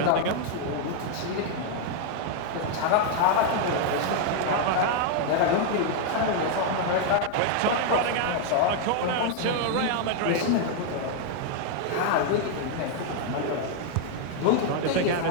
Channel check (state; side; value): different; both; correlation 0.00